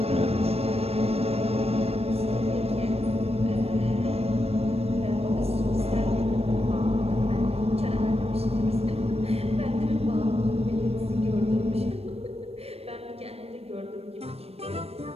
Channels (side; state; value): left; late; 0.29 ms